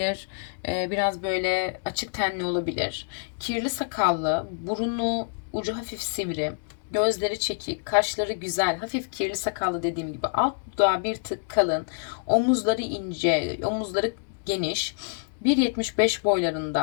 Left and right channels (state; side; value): silent; right; digital silence